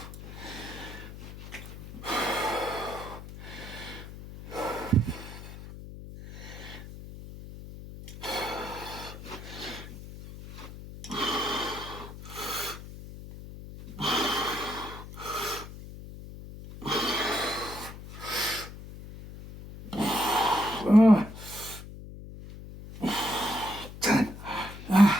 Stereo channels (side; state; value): left; noise; hum, 13 dB below the sound